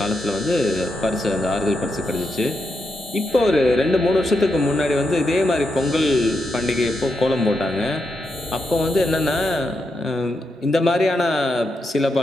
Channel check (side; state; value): both; normal; correlation 0.84